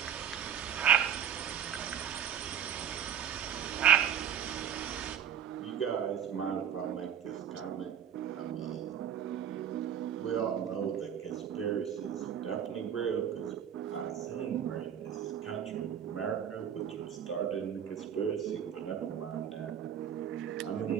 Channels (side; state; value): left; quieter; 8.8 dB